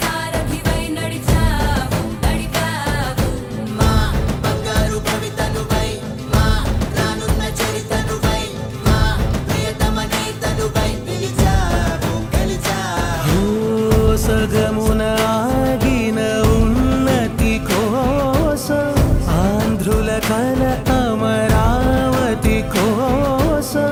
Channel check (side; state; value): both; identical; correlation 1.00